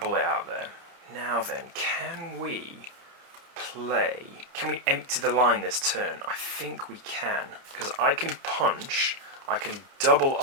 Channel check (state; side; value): late; left; 30 ms